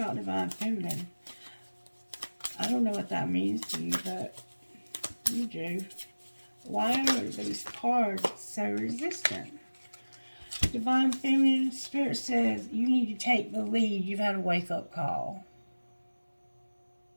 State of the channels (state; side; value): inverted; both; correlation -1.00